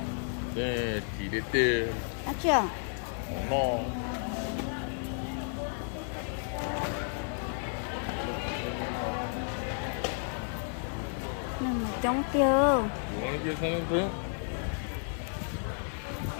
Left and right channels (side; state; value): right; silent; 56 dB below the other